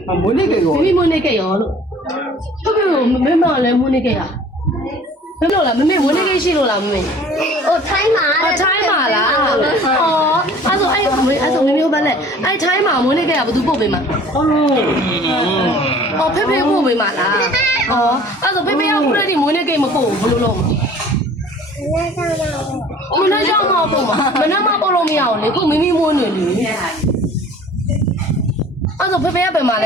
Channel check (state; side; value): normal; both; correlation 0.49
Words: မွေးနေ့ကေရောမိမိမွေးနေ့ကေရောလို့ဟုတ်ကဲ့မမေမလည်းမွေးနေ့ကေရမလို့လားမမေမွေးနေ့ကေရှိလို့လားမမေဟိုထိုင်းမှာထိုင်းမှာလားအော်အဲ့ဆိုမမေဘာလဲအဲ့ထိုင်းမှာမွေးနေ့ကေကဘယ်သူပို့ပေးမှာအော်ဖေဖေပို့ပေးမှာလားအော်အဲ့ဆိုဖေဖေကခုတည်းမွေးနေ့ကေမပို့ဘူးဘယ်လိုလုပ်မလဲကြောက်မပို့မှာမနက်မှပို့လို့မရအောင်လေခုမိမိမွေးနေလေအဲ့ဆိုဖေဖေကပဲမှာလ